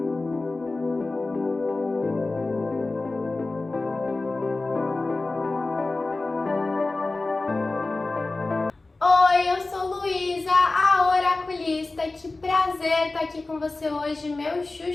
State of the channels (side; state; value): right; quieter; 3.3 dB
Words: Oi, eu sou Luísa, a oraculista. Que prazer estar aqui com você hoje, meu